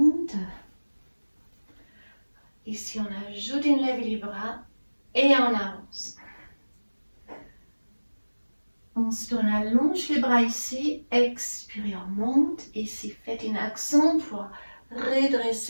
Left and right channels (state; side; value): inverted; both; correlation -1.00